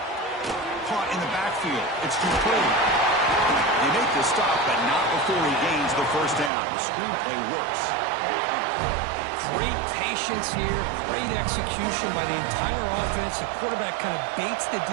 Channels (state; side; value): drops out; left; at 6.5 s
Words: Caught in the backfield. It's Dupree. They make the stop, but not before he gains the first down. The screenplay works. Great patience here. Great execution by the entire offense. The quarterback kind of baits the